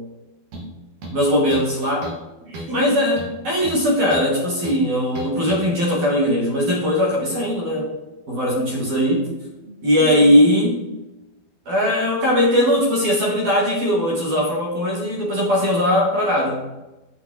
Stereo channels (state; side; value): late; left; 12 ms